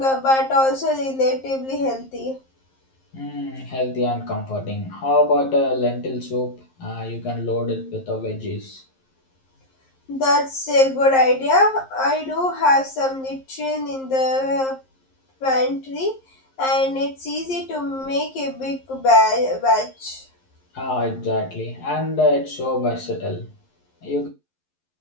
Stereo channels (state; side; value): late; right; 11 ms